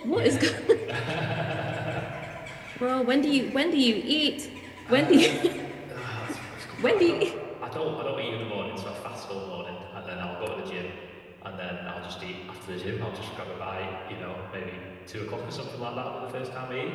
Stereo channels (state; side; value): identical; both; correlation 1.00